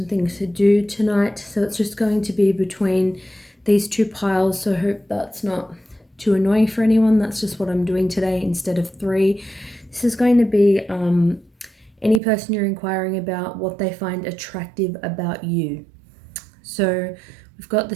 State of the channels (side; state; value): left; drops out; at 12.2 s